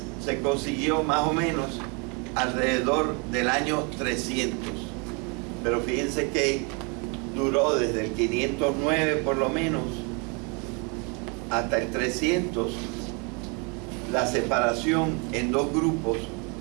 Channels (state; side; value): quieter; left; 33.4 dB